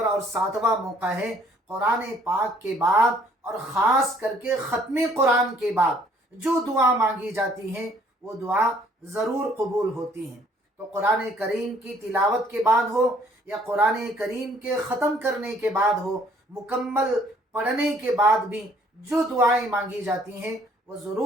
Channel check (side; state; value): both; normal; correlation 0.61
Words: اور 7واں موقع ہے قرآن پاک کے بعد اور خاص کر کے ختم قرآن کے بعد جو دعا مانگی جاتی ہے وہ دعا ضرور قبول ہوتی ہیں۔ تو قرآن کریم کی تلاوت کے بعد ہو یا قرآن کریم کے ختم کرنے کے بعد ہو، مکمل پڑھنے کے بعد بھی جو دعائیں مانگی جاتی ہیں وہ